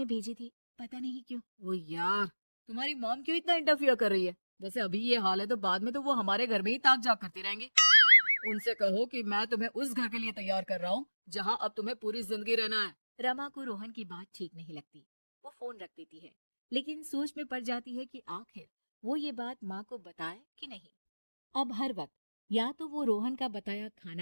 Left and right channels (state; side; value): inverted; both; correlation -1.00